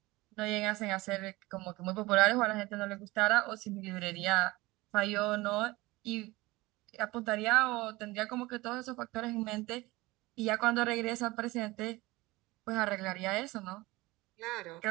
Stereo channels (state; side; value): quieter; left; 20.8 dB